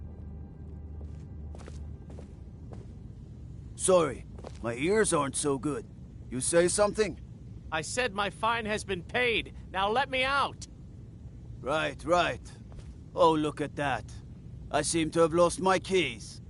Sorry, my ears aren't so good. You say something? I said my fine has been paid, now let me out! Right, right. Oh, look at that. I seem to have lost my keys.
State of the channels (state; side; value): identical; both; correlation 1.00